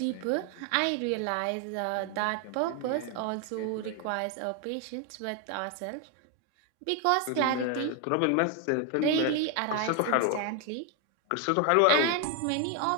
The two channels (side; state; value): both; different; correlation 0.01